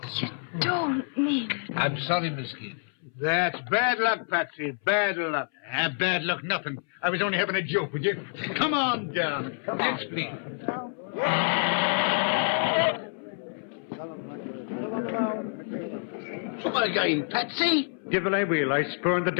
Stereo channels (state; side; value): silent; right; 60 dB below the other